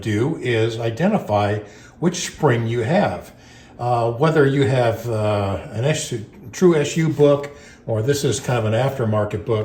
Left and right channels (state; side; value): identical; both; correlation 1.00